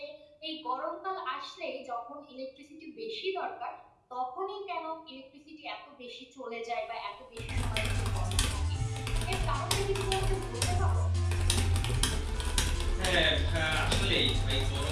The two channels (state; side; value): identical; both; correlation 1.00